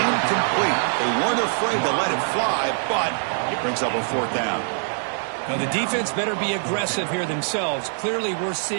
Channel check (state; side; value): silent; left; digital silence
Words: They weren't afraid to let it fly, but it brings up a fourth down. Now, the defense better be aggressive here themselves. Clearly, we're